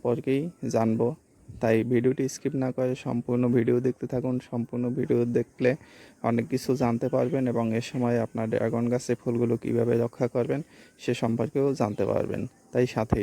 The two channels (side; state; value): both; identical; correlation 1.00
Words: জানবো। তাই ভিডিওটি স্কিপ না করে সম্পূর্ণ ভিডিও দেখতে থাকুন। সম্পূর্ণ ভিডিও দেখলে অনেক কিছু জানতে পারবেন এবং এ সময় আপনার ড্রাগন গাছে ফুলগুলো কিভাবে রক্ষা করবেন সে সম্পর্কেও জানতে পারবেন। তাই